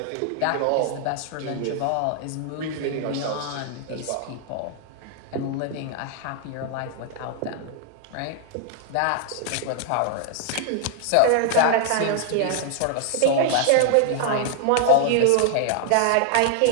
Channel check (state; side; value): different; both; correlation 0.00